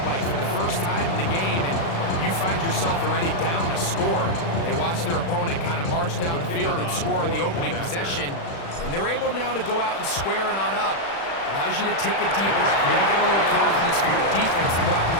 Mike, for the first time in the game, and you find yourself already down a score. They watch their opponent kind of march down the field and score in the opening possession, and they're able now to go out and square it on up. Allows you to take a deep breath, maybe get a little for your defense to go out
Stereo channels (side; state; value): right; late; 36 ms